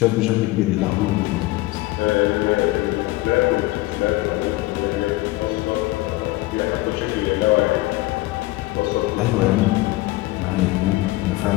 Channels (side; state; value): right; quieter; 19.3 dB